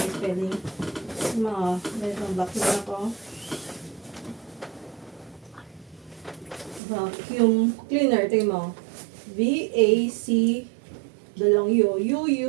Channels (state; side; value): drops out; left; at 6.8 s